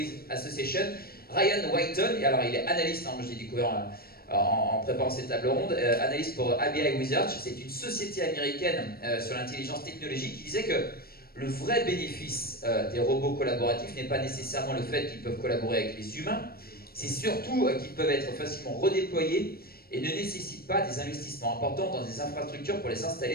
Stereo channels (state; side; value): late; right; 0.44 ms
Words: Association, Ryan Whiteton, et alors il est analyste, moi je l'ai découvert en préparant cette table ronde, analyste pour ABI Research, c'est une société américaine sur l'intelligence technologique, qui disait que le vrai bénéfice des robots collaboratifs n'est pas nécessairement le fait qu'ils peuvent collaborer avec les humains, c'est surtout qu'ils peuvent être facilement redéployés et ne nécessitent pas des investissements importants dans des infrastructures pour les